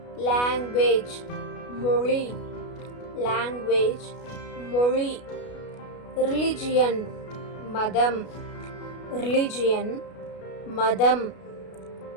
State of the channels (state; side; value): late; right; 33 ms